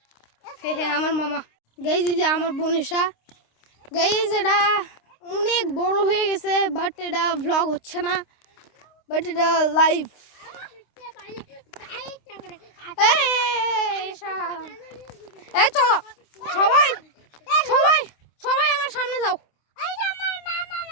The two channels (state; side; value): late; right; 26 ms